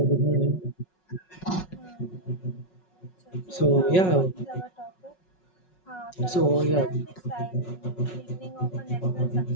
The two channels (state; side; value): late; right; 5.4 ms